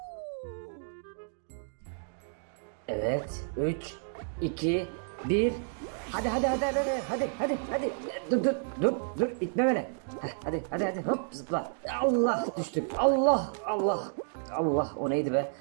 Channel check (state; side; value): silent; left; digital silence